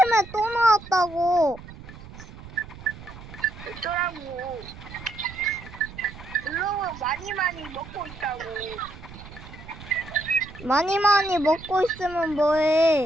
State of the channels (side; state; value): right; noise; rumble, 16 dB below the sound